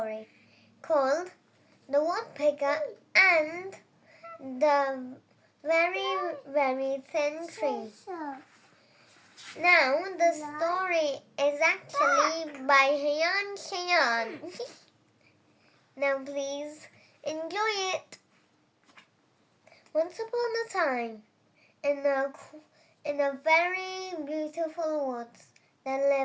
called The Woodpecker and the Very Thin Tree. Now, the story is actually by Hiyansh. Now, please enjoy it. Once upon a time, in a very beautiful woods, there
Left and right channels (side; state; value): both; identical; correlation 1.00